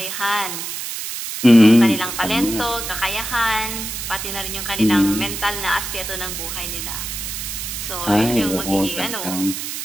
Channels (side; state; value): right; noise; hiss, 6 dB below the sound